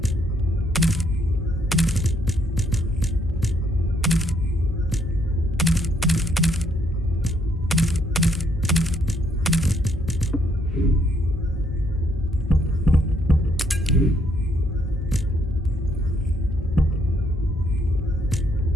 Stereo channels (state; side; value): normal; both; correlation 0.70